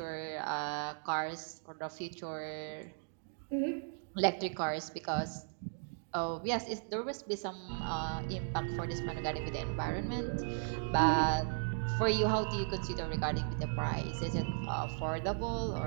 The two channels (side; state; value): left; silent; digital silence